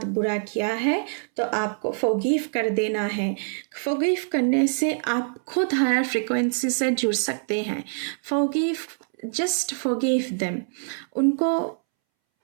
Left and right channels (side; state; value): left; silent; 62 dB below the other